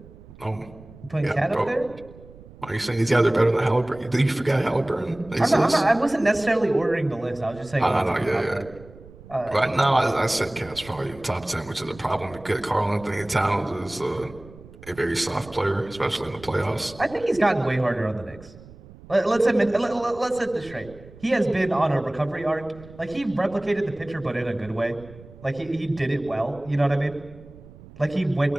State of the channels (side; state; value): right; noise; rumble, 20 dB below the sound